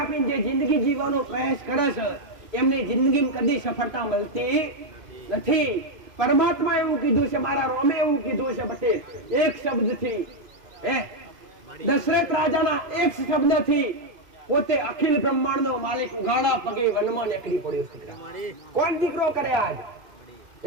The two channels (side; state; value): left; late; 2.5 ms